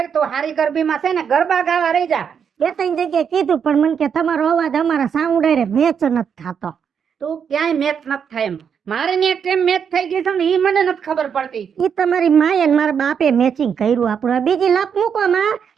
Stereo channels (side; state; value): left; quieter; 7.3 dB